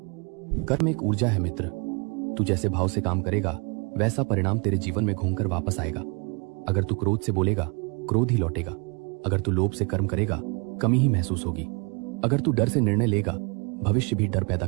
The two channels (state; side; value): quieter; left; 32.4 dB